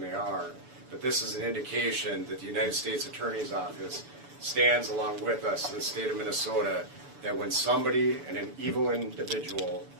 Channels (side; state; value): left; late; 6.9 ms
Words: are, but this is an indication that the United States Attorney's Office stands along with us in the state of Minnesota, that when somebody and an evil individual